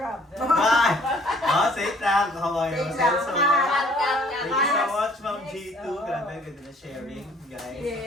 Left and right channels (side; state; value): both; normal; correlation 0.57